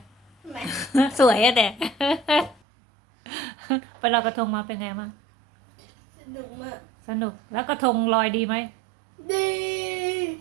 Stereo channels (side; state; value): left; drops out; at 2.6 s